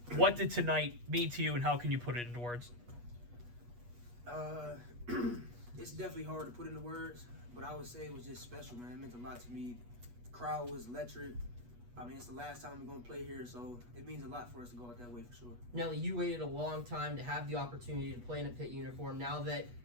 What did tonight mean to you, and how can you put it into words? It's definitely hard to put into words, but I would say it was just special, man. It meant a lot to me. The crowd was electric. I mean, it's the last time we're going to play here, so it means a lot for us to go out that way for sure. Nelly, you waited a long time to have the opportunity to play in a Pitt uniform. Now that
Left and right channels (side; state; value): left; late; 8.3 ms